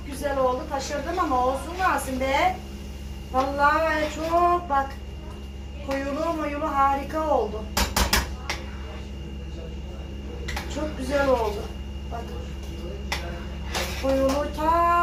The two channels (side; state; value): both; identical; correlation 1.00